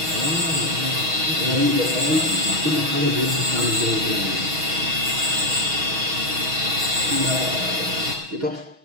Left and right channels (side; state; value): left; late; 6.3 ms